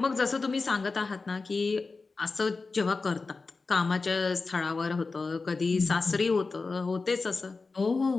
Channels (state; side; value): quieter; right; 4.0 dB